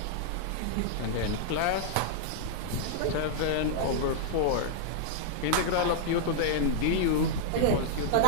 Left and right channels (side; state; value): both; different; correlation -0.01